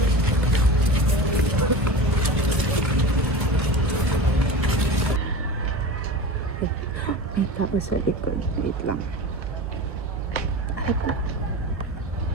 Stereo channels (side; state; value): left; late; 1.3 ms